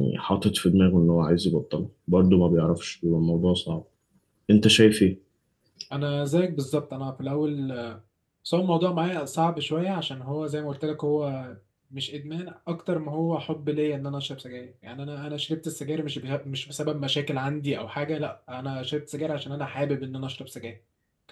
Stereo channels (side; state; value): both; identical; correlation 1.00